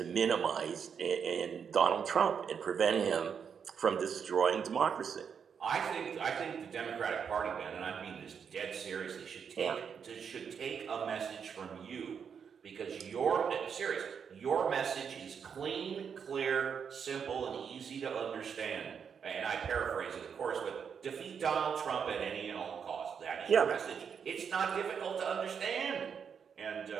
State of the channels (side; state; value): left; quieter; 6.9 dB